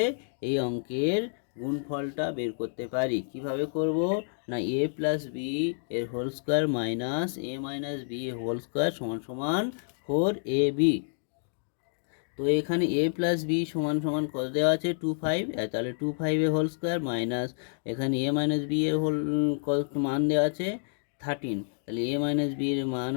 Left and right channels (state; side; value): silent; right; digital silence